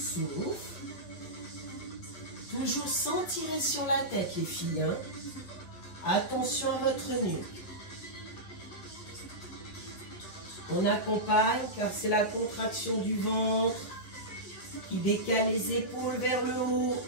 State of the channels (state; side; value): late; right; 9.8 ms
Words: Toujours sans tirer sur la tête, les filles. Hein? Attention à votre nuque. On accompagne car c'est la contraction du ventre qui décale les épaules vers le haut.